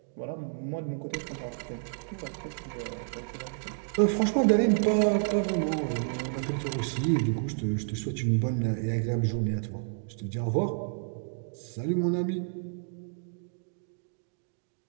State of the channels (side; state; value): left; silent; digital silence